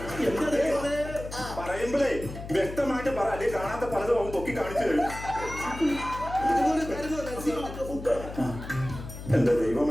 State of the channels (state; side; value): noise; left; hum, 11 dB below the sound